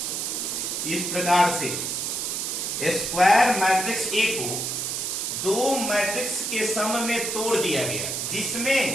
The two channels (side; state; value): right; noise; hiss, 2 dB below the sound